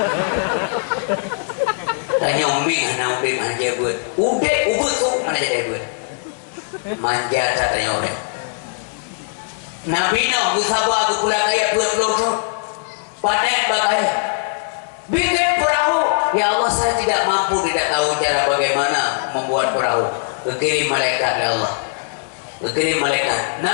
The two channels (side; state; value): right; silent; digital silence